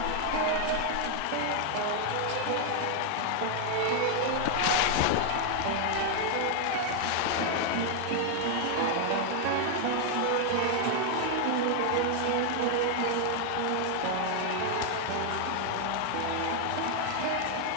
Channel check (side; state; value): both; different; correlation 0.00